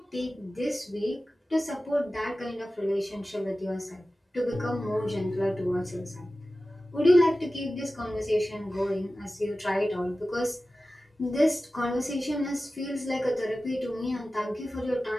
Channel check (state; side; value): normal; both; correlation 0.95